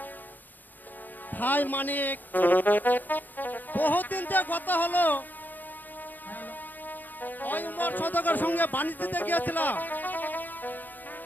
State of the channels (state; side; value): late; right; 0.086 ms